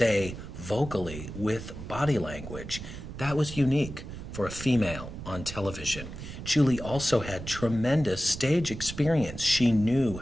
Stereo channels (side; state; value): right; noise; rumble, 10 dB below the sound